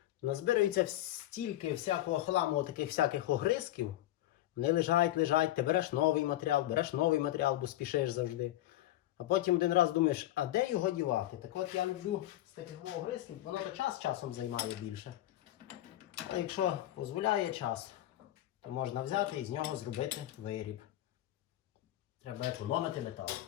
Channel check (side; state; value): right; quieter; 14.5 dB